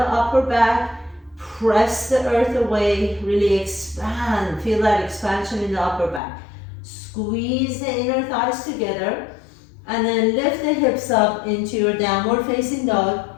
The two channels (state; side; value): drops out; right; at 6.2 s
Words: upper back. Press the earth away, really expand. Feel that expansion in the upper back. Squeeze the inner thighs together and then lift the hips up into your downward facing dog.